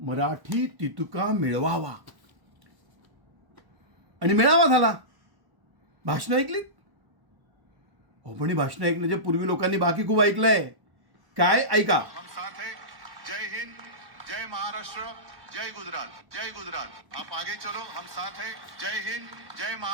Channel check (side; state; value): left; late; 1.1 ms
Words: तितुका मिळवावा आणि मिळावा झाला. भाषण ऐकलीत? हो, पण ही भाषण ऐकण्याच्या पूर्वी लोकांनी बाकी खूप ऐकलंय. काय ऐका. हम साथ हैं. जय हिंद, जय महाराष्ट्र, जय गुजरात, जय गुजरात. आप आगे चलो, हम साथ हैं. जय हिंद, जय